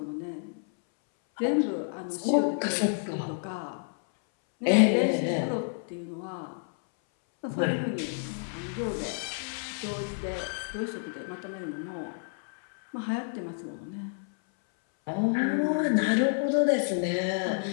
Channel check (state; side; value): silent; right; 58 dB below the other